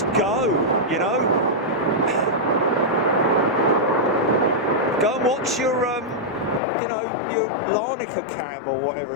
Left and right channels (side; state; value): right; drops out; at 6.6 s